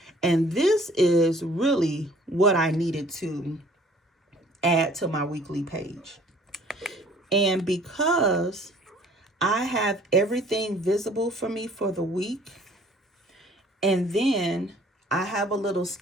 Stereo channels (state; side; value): normal; both; correlation 0.54